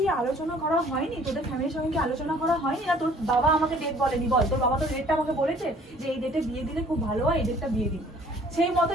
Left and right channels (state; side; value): normal; both; correlation 0.55